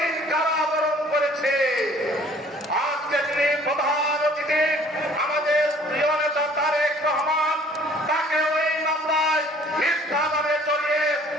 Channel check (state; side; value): normal; both; correlation 0.55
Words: কারাবরণ করেছি। আজকে তিনি প্রধান অতিথি আমাদের প্রিয় নেতা তারেক রহমান, তাকেও এই মামলায় মিথ্যা নামে জড়িয়ে